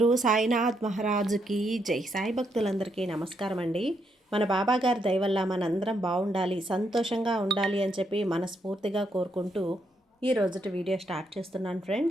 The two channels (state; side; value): normal; both; correlation 0.77